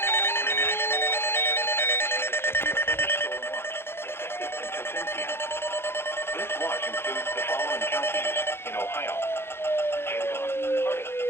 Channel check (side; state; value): right; late; 0.11 ms